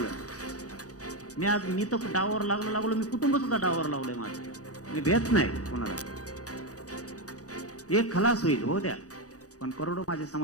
मी तर डावावर लागलो. मी कुटुंब सुद्धा डावावर लावलंय माझं. मी भेट नाही कोणाला. एक खलास होईल, हो द्या. पण करोडो माझ्या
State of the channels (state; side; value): late; right; 0.67 ms